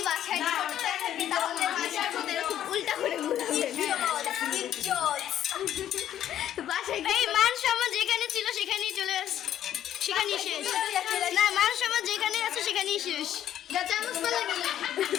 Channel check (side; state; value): right; quieter; 11.2 dB